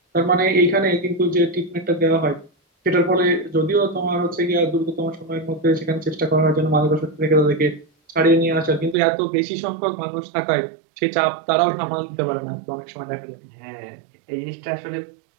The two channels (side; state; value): left; drops out; at 9.0 s